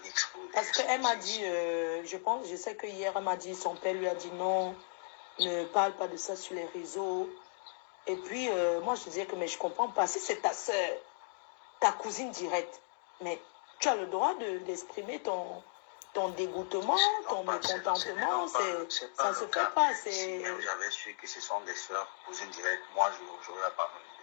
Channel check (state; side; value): silent; right; digital silence